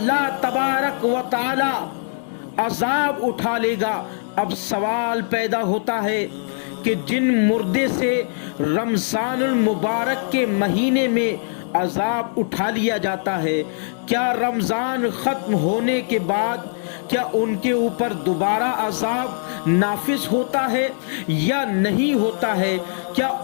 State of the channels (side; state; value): right; silent; digital silence